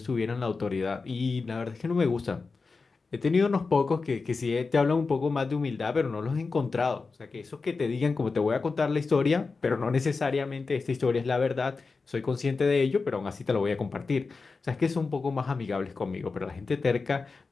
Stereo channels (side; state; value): right; quieter; 4.3 dB